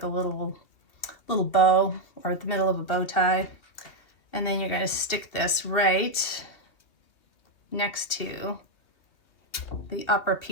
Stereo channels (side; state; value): right; late; 2.5 ms